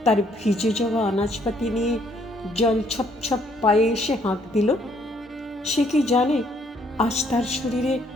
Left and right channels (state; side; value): normal; both; correlation 0.67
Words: তার ভিজে যাওয়া আনাজপাতি নিয়ে জল ছপ ছপ পায়ে এসে হাঁক দিল, সে কি জানে আজ তার শরীরে